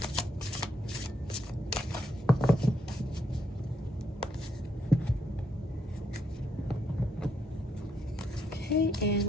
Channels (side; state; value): both; normal; correlation 0.76